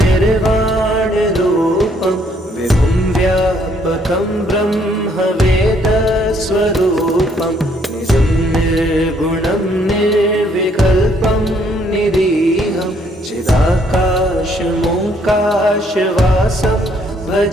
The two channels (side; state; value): both; normal; correlation 0.67